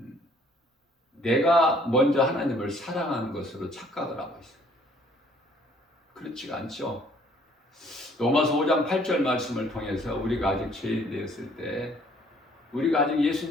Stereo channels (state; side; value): normal; both; correlation 0.60